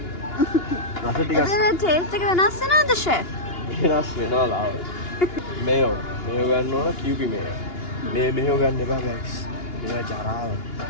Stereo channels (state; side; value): late; right; 2.8 ms